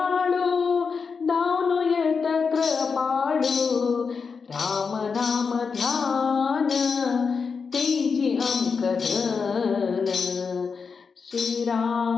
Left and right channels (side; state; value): right; quieter; 5.4 dB